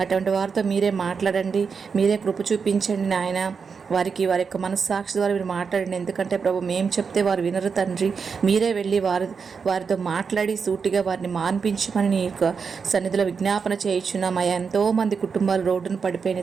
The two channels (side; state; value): left; quieter; 5.7 dB